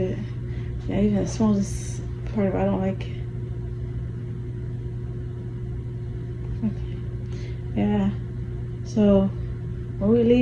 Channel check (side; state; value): both; identical; correlation 1.00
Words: Yeah, even the smallest part of it, I don't like. Okay. Yeah. So when we